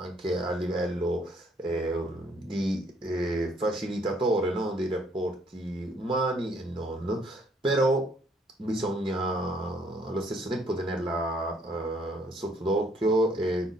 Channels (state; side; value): normal; both; correlation 0.65